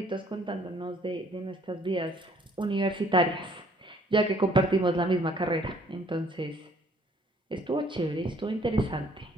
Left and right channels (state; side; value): normal; both; correlation 0.60